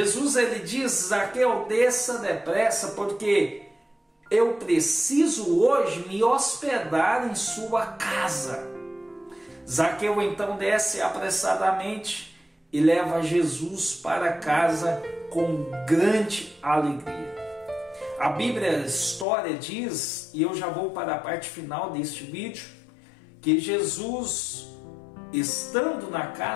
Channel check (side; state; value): right; drops out; at 19.2 s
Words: ele diz: Zaqueu, desça depressa, porque eu preciso hoje me hospedar em sua casa. Zaqueu então desce apressadamente e leva Jesus para casa com grande alegria. A Bíblia, a história diz, e eu já vou para a parte final deste vídeo, que Jesus, estando na